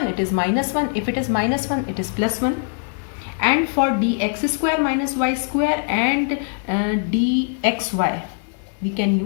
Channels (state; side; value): silent; right; 57 dB below the other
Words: it is minus 1. If it is minus 1, it is plus 1. And for dx square minus y square and dxy, we can